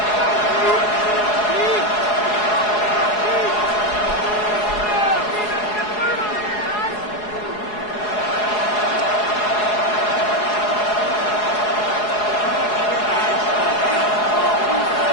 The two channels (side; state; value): right; late; 4.8 ms